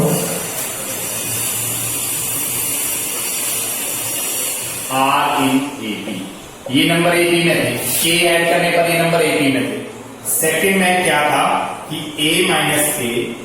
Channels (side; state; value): both; identical; correlation 1.00